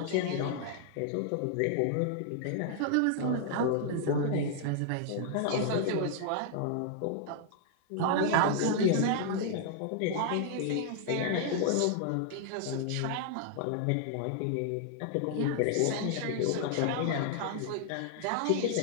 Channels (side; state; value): both; different; correlation -0.01